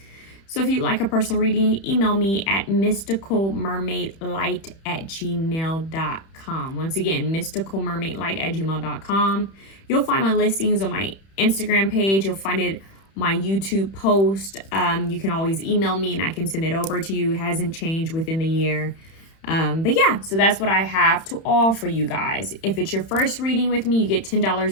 So if you'd like a personal reading, email me at mysticalmermaidlight@gmail.com. Once again, mysticalmermaidlight@gmail.com. You'll find my listings on my Instagram page. You'll find it my YouTube post. You can always email me and I can send it over to you. It hasn't changed within the year. But yeah, so that's what I have to offer you guys. If it's your first reading with me, you get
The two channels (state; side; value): late; right; 31 ms